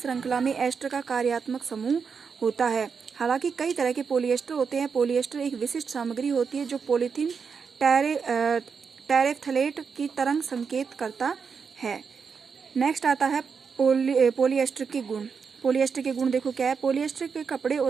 में एस्टर का कार्यात्मक समूह होता है। हालांकि कई तरह के पॉलिएस्टर होते हैं। पॉलिएस्टर एक विशिष्ट सामग्री होती है जो पॉलीथीन टेरेफ्थलेट की तरंग संकेत करता है। नेक्स्ट आता है पॉलिएस्टर के गुण। पॉलिएस्टर के गुण देखो क्या है। पॉलिएस्टर के कपड़े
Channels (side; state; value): left; quieter; 5.9 dB